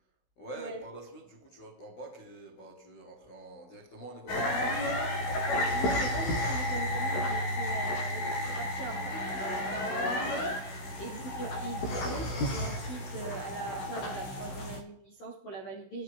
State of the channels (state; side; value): late; right; 16 ms